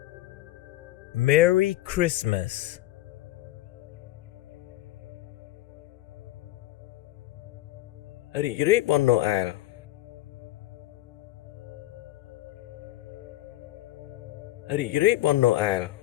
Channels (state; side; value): quieter; right; 16.1 dB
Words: Merry Christmas. រីករាយបុណ្យណូអែលរីករាយបុណ្យណូអែល